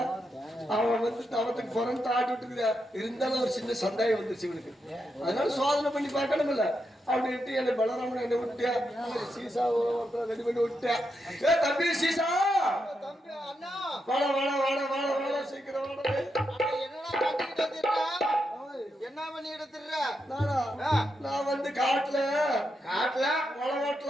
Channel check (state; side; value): normal; both; correlation 0.84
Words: அவன் வந்து தவத்துக்கு புறந்து ஆட்டி விட்டுக்கிறியா. இருந்தாலும் ஒரு சின்ன சந்தேகம் வந்துருச்சு இவனுக்கு. அதனால சோதனை பண்ணி பார்க்கணும் இல்ல அப்படின்ட்டு என்ன பலராமன் என்ன விட்டியா, சீசா ரெடி பண்ணி விட்டியா. ஏ தம்பி சீசா, தம்பி அண்ணா, வாடா வாடா வாடா வாடா வாடா சீக்கிரம் வாடா. என்ன பண்ணிட்டு திர்ற? நான் வந்து காட்டுல காட்டுல மழை